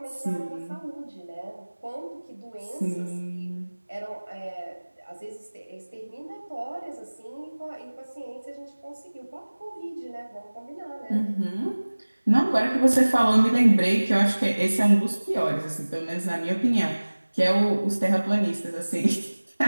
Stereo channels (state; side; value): inverted; both; correlation -1.00